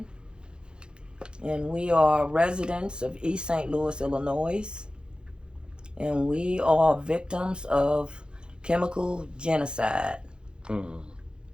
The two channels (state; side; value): late; left; 0.050 ms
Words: And we are residents of East St. Louis, Illinois. And we are victims of chemical genocide. For